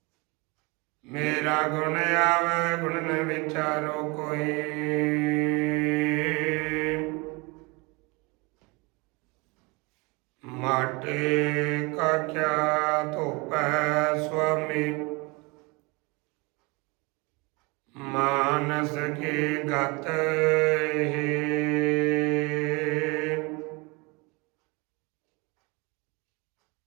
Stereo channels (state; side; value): quieter; left; 27.3 dB